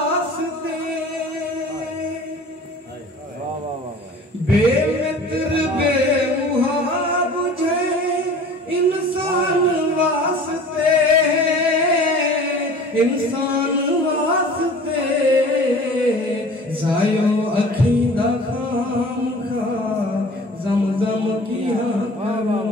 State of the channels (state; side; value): normal; both; correlation 0.44